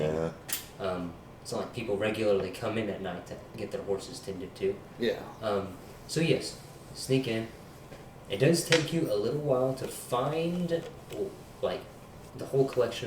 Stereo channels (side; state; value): both; identical; correlation 1.00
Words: Yeah. It's not like people regularly come in at night to get their horses tended to. Yeah. So yes, sneak in. It does take you a little while to find, like, the whole